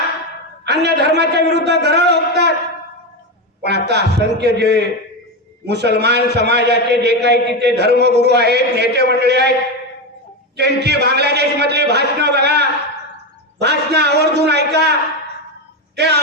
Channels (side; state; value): both; normal; correlation 0.14